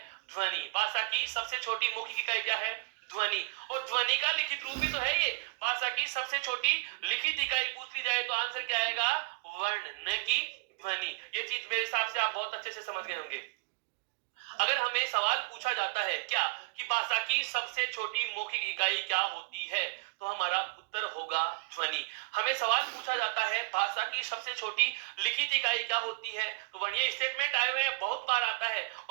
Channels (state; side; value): quieter; left; 27.6 dB